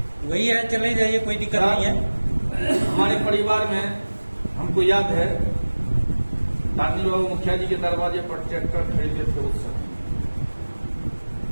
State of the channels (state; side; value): inverted; both; correlation -1.00